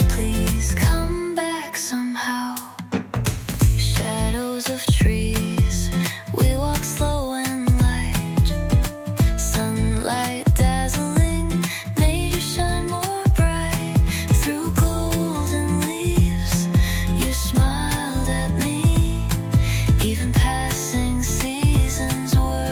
please come back somehow. Shadows of trees, we walk slow and light. Sunlight dazzling made you shine more bright. Through golden leaves, you smiled at me. Even passing seasons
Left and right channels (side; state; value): both; identical; correlation 1.00